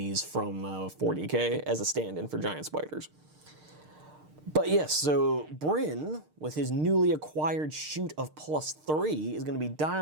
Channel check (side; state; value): left; late; 6.6 ms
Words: from 40k as a stand-in for giant spiders. But yes, so Bryn, with his newly acquired shoot of +3, is going to be